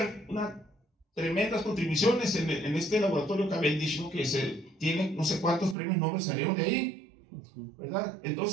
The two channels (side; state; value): left; drops out; at 5.8 s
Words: unas tremendas contribuciones en este laboratorio Cavendish, ¿no? Que tiene no sé cuántos premios Nobel salieron de ahí, ¿verdad?